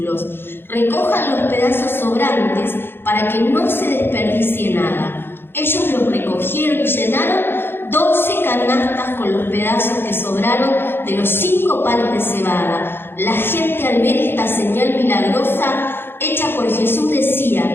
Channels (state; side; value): late; right; 0.10 ms